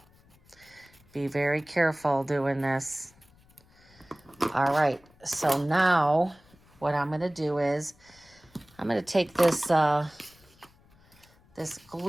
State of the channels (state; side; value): noise; left; rumble, 29 dB below the sound